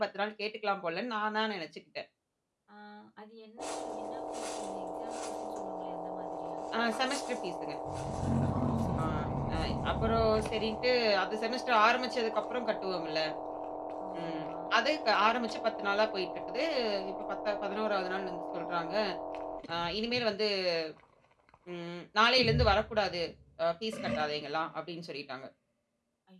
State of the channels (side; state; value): both; identical; correlation 1.00